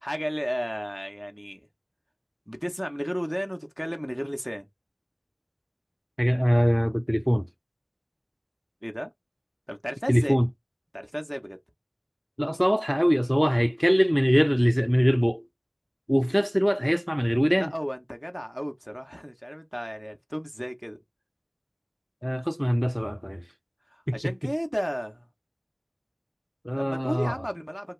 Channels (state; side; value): identical; both; correlation 1.00